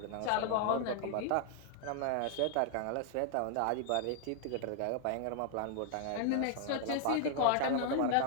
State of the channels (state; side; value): different; both; correlation 0.00